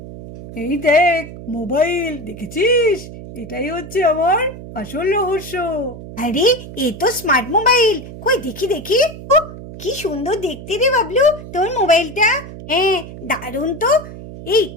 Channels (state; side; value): noise; right; hum, 13 dB below the sound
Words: এই দেখ মোবাইল, দেখেছিস? এটাই হচ্ছে আমার আসল রহস্য। আরে এ তো স্মার্ট মোবাইল, কই দেখি। ও কি সুন্দর দেখতে রে বাবলু তোর মোবাইলটা। হ্যাঁ দারুণ তো।